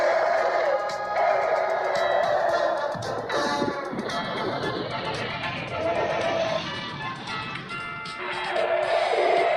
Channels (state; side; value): identical; both; correlation 1.00